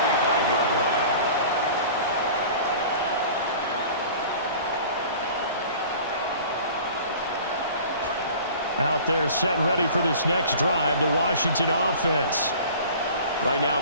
Out there set and ready for this next drive, the Washington offense. Right now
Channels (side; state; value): both; inverted; correlation -0.43